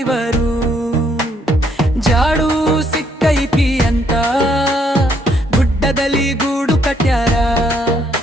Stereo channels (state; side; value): normal; both; correlation 0.70